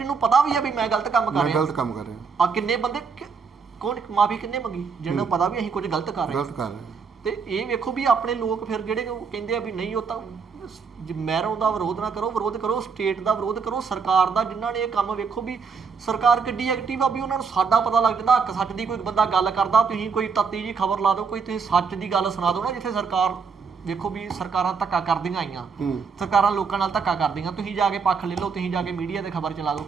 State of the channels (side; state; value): left; quieter; 5.6 dB